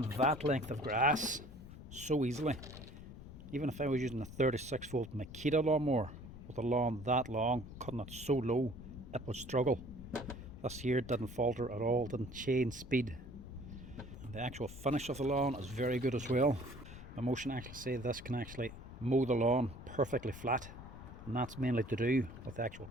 that length of grass so easily. Even if I was using a 36 volt Makita lawnmower with a lawn that long, cutting it so low, it would struggle. This here didn't falter at all, didn't change speed. And the actual finish of the lawn is very good as well. Mammotion actually say this can actually mow the lawn perfectly flat, and that's mainly to do with the actual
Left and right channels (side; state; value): left; noise; rumble, 13 dB below the sound